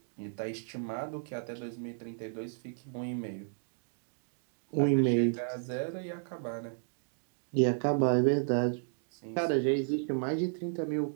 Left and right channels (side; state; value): left; silent; digital silence